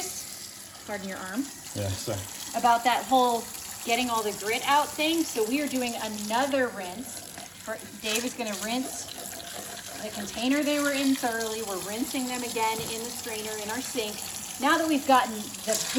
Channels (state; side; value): identical; both; correlation 1.00